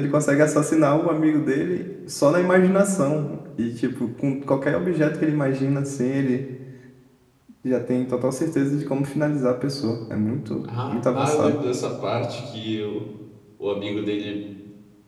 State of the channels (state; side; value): identical; both; correlation 1.00